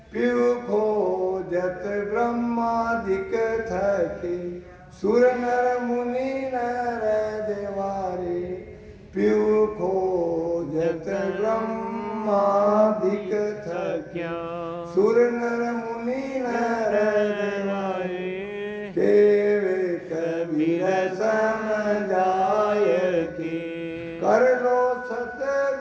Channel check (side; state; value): both; identical; correlation 1.00